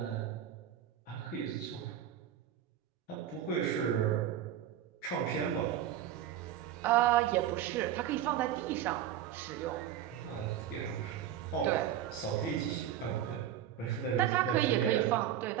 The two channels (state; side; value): quieter; left; 10.8 dB